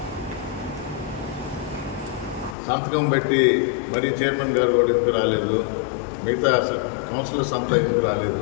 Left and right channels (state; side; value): drops out; right; at 2.6 s